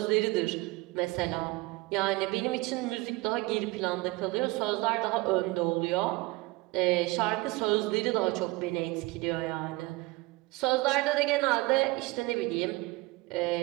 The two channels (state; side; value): quieter; left; 22.3 dB